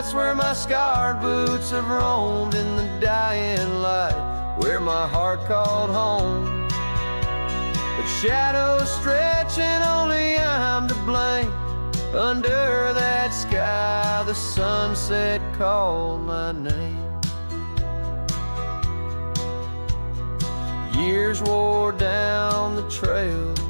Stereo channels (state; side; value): inverted; both; correlation -1.00